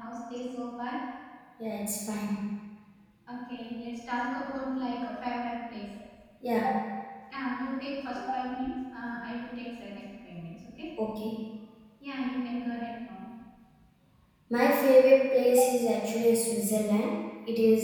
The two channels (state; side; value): identical; both; correlation 1.00